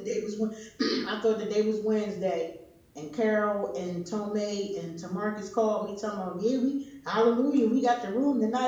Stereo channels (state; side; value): identical; both; correlation 1.00